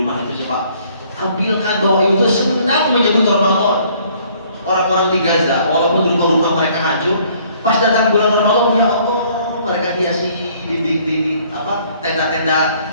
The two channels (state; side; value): inverted; both; correlation -0.61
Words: itu coba tampilkan bahwa itu senang menyebut Ramadan. Orang-orang di Gaza, walaupun rumah-rumah mereka hancur, pas datang bulan Ramadan, ya Allah, mereka hiasi dinding tenda-tenda